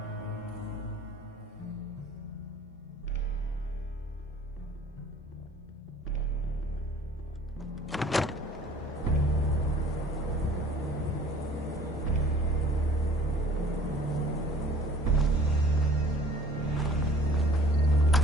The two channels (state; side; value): normal; both; correlation 0.51